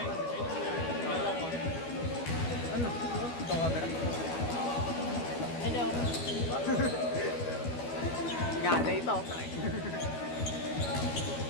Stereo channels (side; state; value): right; late; 12 ms